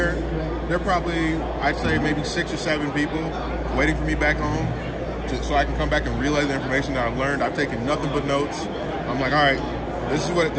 There are probably, I'd say, maybe 6 or 7 people waiting for me back home so I can come back and relay the information that I've learned. I've taken nothing but notes. I'm like, all right, this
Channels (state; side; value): identical; both; correlation 1.00